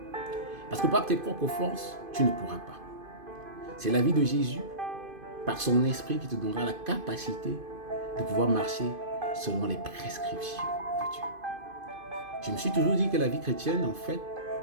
Parce que par tes propres forces, tu ne pourras pas. C'est la vie de Jésus, par son esprit, qui te donnera la capacité de pouvoir marcher selon les prescriptions de Dieu. Je me suis toujours dit que la vie chrétienne, en fait,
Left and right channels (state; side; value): late; left; 2.5 ms